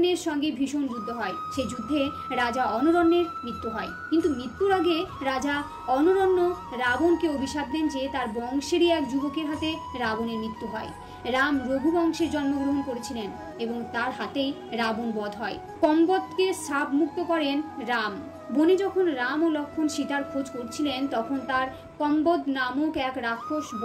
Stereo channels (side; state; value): both; identical; correlation 1.00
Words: সঙ্গে ভীষণ যুদ্ধ হয়। সেই যুদ্ধে রাজা অনরণ্যের মৃত্যু হয়। কিন্তু মৃত্যুর আগে রাজা অনরণ্য রাবণকে অভিশাপ দেন যে তার বংশেরই এক যুবকের হাতে রাবণের মৃত্যু হয়। রাম রঘুবংশে জন্মগ্রহণ করেছিলেন এবং তার হাতেই রাবণ বধ হয়। কম্বদকে শাপ মুক্ত করেন রাম। বনে যখন রাম ও লক্ষ্মণ সীতার খোঁজ করছিলেন তখন তার কম্বদ নামক এক রাক্ষস